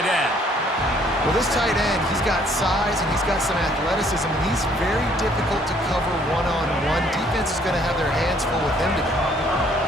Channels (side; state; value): both; normal; correlation 0.62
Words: end. Well, this tight end, he's got size and he's got some athleticism, and he's very difficult to cover one-on-one. Defense is going to have their hands full with him today.